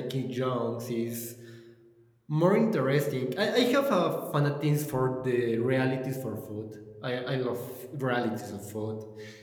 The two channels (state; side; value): identical; both; correlation 1.00